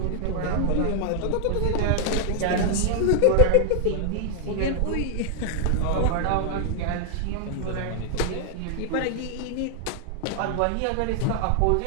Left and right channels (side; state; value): both; different; correlation 0.00